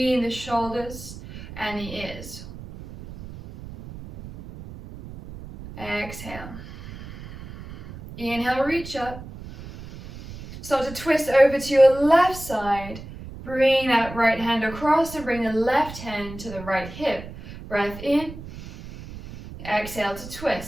the shoulders and the ears. Exhale. Inhale, reach up. Start to twist over to your left side. Bring that right hand across and bring the left hand to the right hip. Breath in. Exhale to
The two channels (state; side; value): noise; right; rumble, 14 dB below the sound